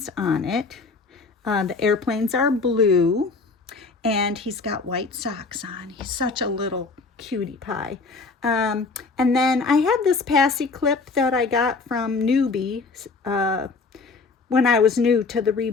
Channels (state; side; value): quieter; right; 4.2 dB